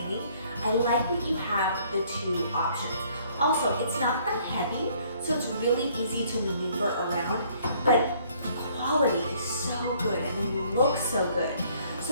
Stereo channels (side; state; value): both; inverted; correlation -0.61